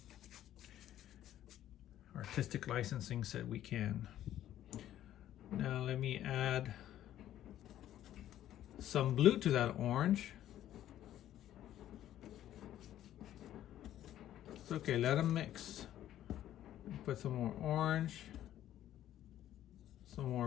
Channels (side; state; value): right; quieter; 12.2 dB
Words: Artistic licensing said we can. Now let me add some blue to that orange. It's okay, let them mix. Put some more orange, some